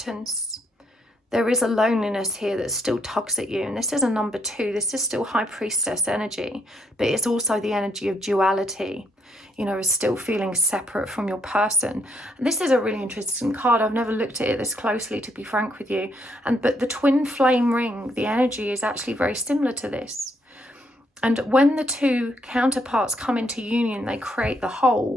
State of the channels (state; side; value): normal; both; correlation 0.74